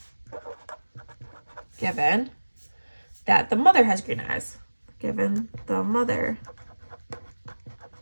that the mother has green eyes. Given the mother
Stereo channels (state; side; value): inverted; both; correlation -1.00